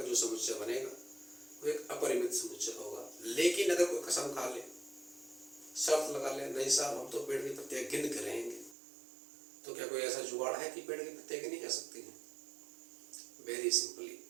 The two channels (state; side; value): drops out; left; at 8.8 s